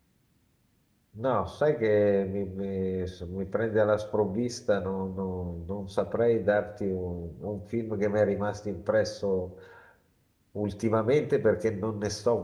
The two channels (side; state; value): both; identical; correlation 1.00